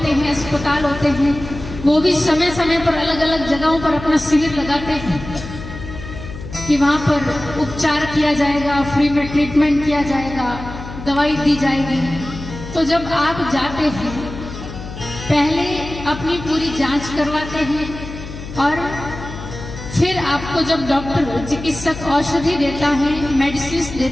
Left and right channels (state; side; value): noise; left; hum, 11 dB below the sound